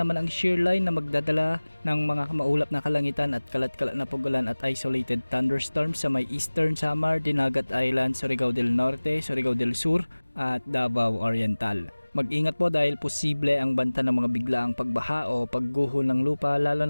ang shear line na magdadala ng mga maulap na kalangitan at kalat-kalat na pagulan at isolated thunderstorms sa may Eastern Samar, Dinagat Island, Surigao del Norte, Surigao del Sur at Davao Oriental. Mag-ingat po dahil posible ang banta ng mga biglaang pagbaha o pagguho ng lupa, lalo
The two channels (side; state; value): both; inverted; correlation -1.00